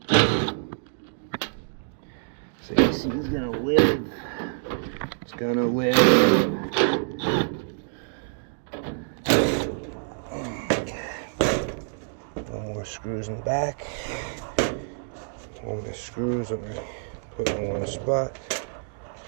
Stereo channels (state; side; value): silent; left; digital silence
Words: So AC is gonna live. It's gonna live. Okay. No more screws in the back. All my screws I'm gonna put in one spot.